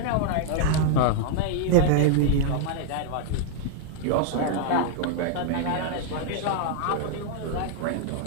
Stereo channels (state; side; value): different; both; correlation -0.01